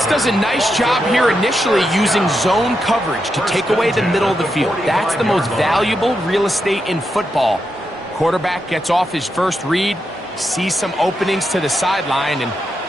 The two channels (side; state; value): both; normal; correlation 0.85